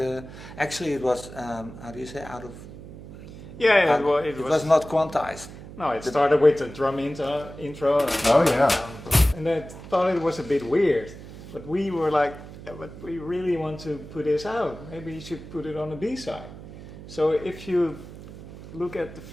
actually it was, how do you say, out of... Yeah, it was not quantized. No, it started with the drum intro. And I thought it was a bit weird, but we were like, but we really want to put this out. Maybe you should put it on the B-side. So if you look at the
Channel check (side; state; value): right; noise; hum, 15 dB below the sound